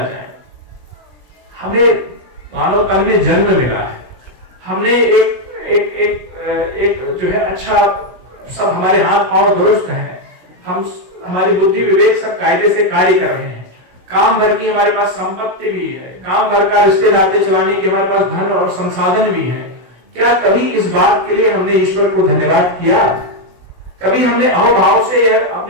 हमें मानव तन में जन्म मिला है, हमने एक जो है अच्छा, सब हमारे हाथ पांव दुरुस्त हैं, हमारी बुद्धि विवेक सब कायदे से कार्य कर रहे हैं, काम भर की हमारे पास संपत्ति भी है, काम भर का रिश्ते नाते चलाने की हमारे पास धन और संसाधन भी है। क्या कभी इस बात के लिए हमने ईश्वर को धन्यवाद किया? कभी हमने अहोभाव से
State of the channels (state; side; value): late; left; 16 ms